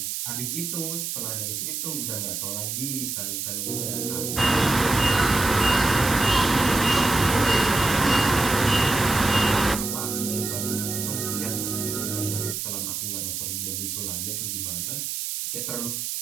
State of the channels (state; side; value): noise; right; hiss, 4 dB below the sound